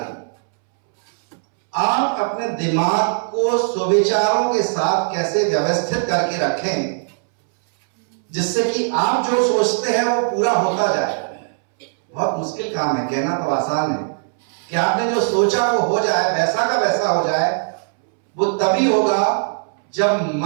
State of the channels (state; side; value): silent; left; 66 dB below the other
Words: आप अपने दिमाग को सुविचारों के साथ कैसे व्यवस्थित करके रखें जिससे कि आप जो सोचते हैं वो पूरा होता जाए. बहुत मुश्किल काम है, कहना तो आसान है कि आपने जो सोचा वो हो जाए, वैसा का वैसा हो जाए. वो तभी होगा जब